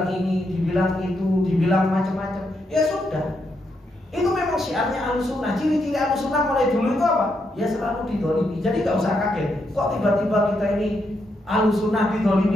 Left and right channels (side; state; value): both; normal; correlation 0.80